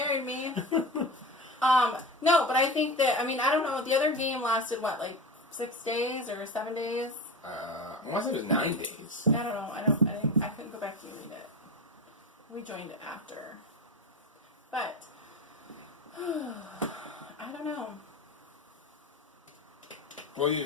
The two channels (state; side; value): normal; both; correlation 0.27